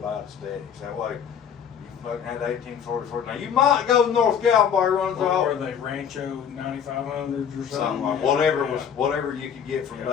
aesthetics. That way, you fucking had 1844. Now, you might go to North Gallenberg runs What off. were they, Rancho 9500s or something? Something like, Yeah. whatever Yeah. was, whatever you could get from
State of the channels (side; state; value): right; quieter; 7.9 dB